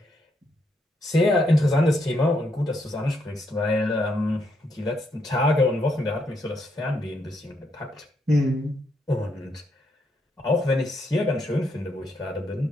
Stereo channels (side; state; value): both; normal; correlation 0.77